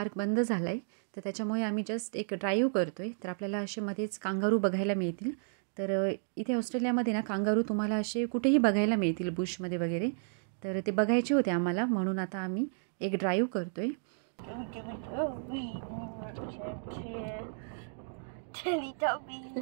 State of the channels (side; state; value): left; silent; digital silence